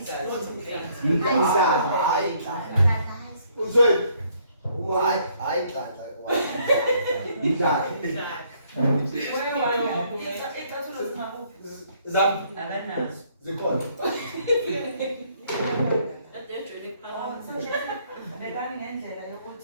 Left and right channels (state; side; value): inverted; both; correlation -0.66